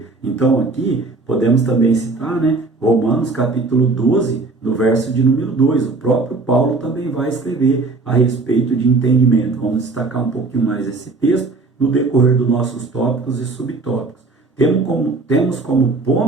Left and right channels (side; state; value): left; quieter; 3.6 dB